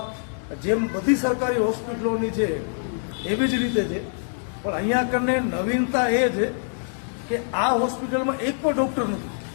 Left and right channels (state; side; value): silent; right; digital silence